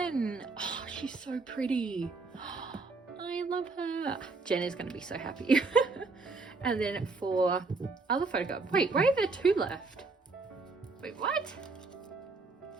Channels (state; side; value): quieter; left; 3.9 dB